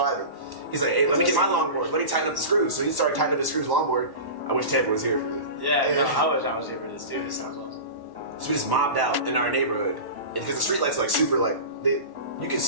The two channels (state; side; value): late; left; 1.1 ms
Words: He's like, "Hey, let me get my longboard. Let me tighten up the screws." So he started tightening up his screws longboard. I wish Ted was here for this. Yeah, no, I wish I was here for this too. This sounds awesome. So we just mobbed out in our neighborhood because the street lights are like super like you can